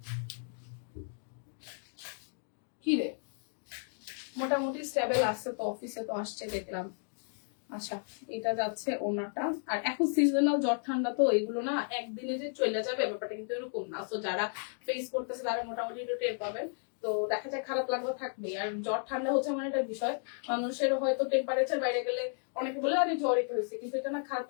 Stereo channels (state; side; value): silent; right; 55 dB below the other